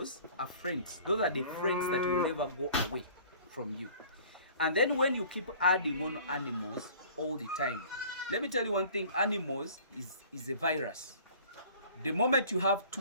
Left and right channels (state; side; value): inverted; both; correlation -0.48